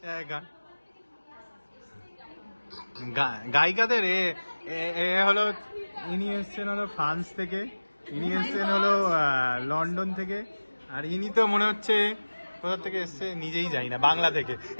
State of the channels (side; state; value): both; inverted; correlation -1.00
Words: গান গায়িকাদের এ হলো, ইনি এসছেন হলো ফ্রান্স থেকে, ইনি এসছেন হলো লন্ডন থেকে, আর ইনি তো মনে হচ্ছে কোথা থেকে এসছে নিজেই যাই না, বাংলা থেকে।